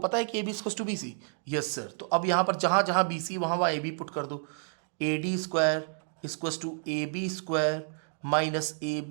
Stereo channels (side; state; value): left; silent; 58 dB below the other